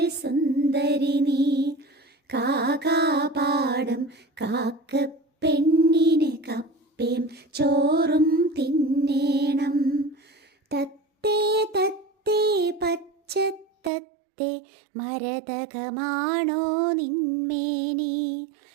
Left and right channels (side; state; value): left; drops out; at 13.9 s